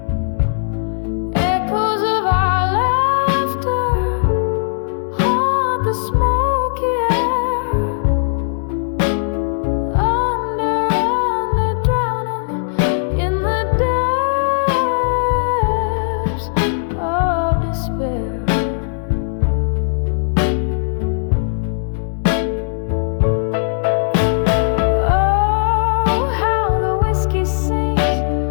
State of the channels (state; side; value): silent; right; 67 dB below the other